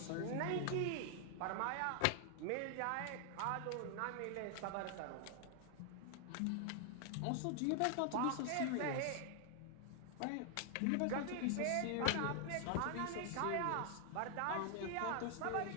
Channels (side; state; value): both; different; correlation 0.00